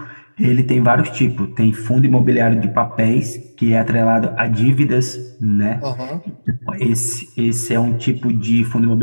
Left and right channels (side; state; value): both; inverted; correlation -1.00